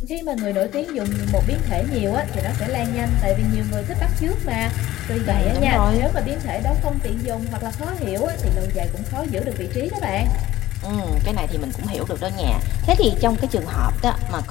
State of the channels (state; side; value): quieter; right; 15.3 dB